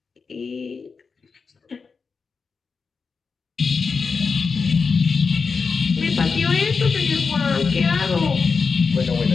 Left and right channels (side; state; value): right; quieter; 5.0 dB